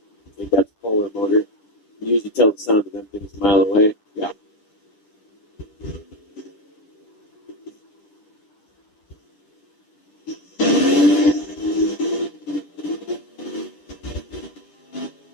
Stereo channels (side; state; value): right; late; 10 ms